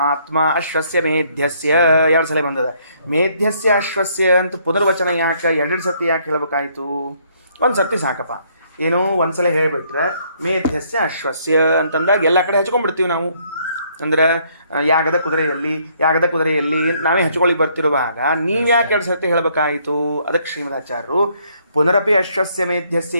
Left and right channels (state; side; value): inverted; both; correlation -0.67